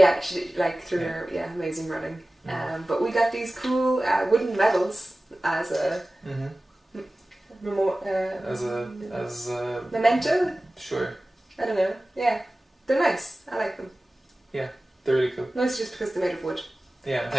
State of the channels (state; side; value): normal; both; correlation 0.97